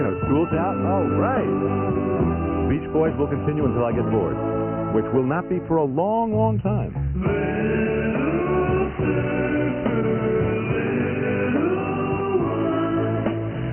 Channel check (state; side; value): identical; both; correlation 1.00